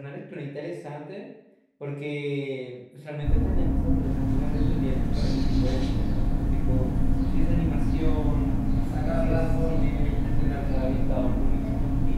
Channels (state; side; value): identical; both; correlation 1.00